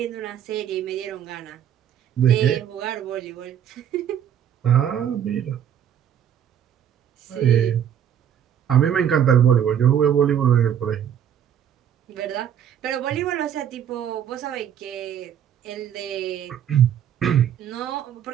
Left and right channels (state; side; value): quieter; left; 9.3 dB